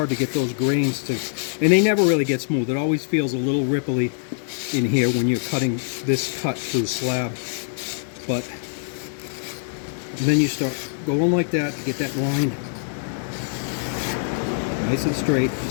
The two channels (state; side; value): silent; right; 59 dB below the other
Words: to get those grains to, and they never really get smooth. It always feels a little ripply in here when you're cutting this cut through slab. But then you start going like that to get that line nice and straight.